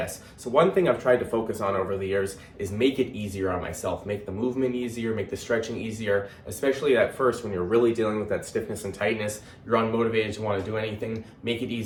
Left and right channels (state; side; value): identical; both; correlation 1.00